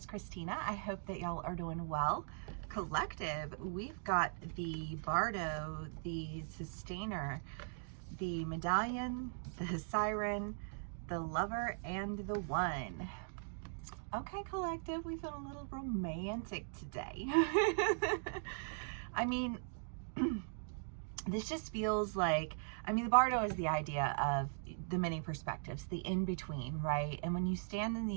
Christina. I hope that y'all are doing well. Collective, we've got the Bardo, the Sustainer, the Medallion, the Siren, the Lover, and the One. Okay, collective, we feel a little romantic today. I mean, this just feels like, the Bardo is the idea of the many perspectives, the in-between, right? And when you stand in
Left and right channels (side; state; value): left; silent; digital silence